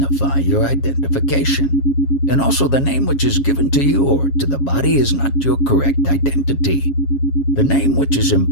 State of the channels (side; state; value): right; late; 7.3 ms